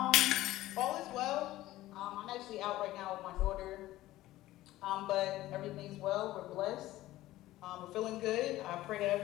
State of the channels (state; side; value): quieter; right; 16.0 dB